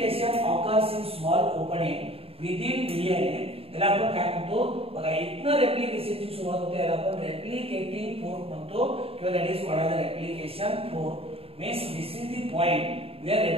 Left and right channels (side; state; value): left; late; 0.28 ms